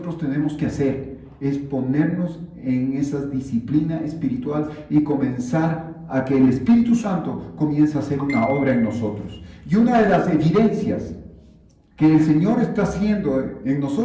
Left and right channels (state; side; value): identical; both; correlation 1.00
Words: tenemos que hacer, es ponernos en esa disciplina espiritual y comenzar a que el Espíritu Santo comience a hacer una obra en nosotros. Y una de las evidencias que el Señor está haciendo en